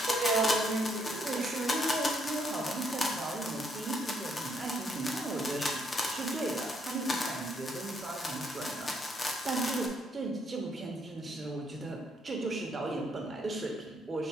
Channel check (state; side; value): normal; both; correlation 0.71